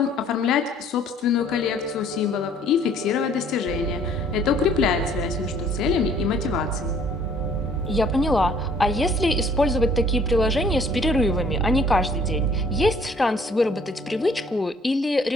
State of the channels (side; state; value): both; normal; correlation 0.58